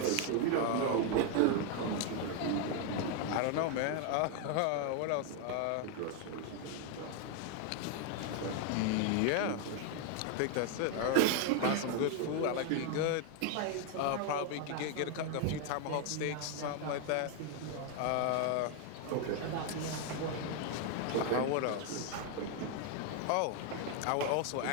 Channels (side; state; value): both; different; correlation 0.01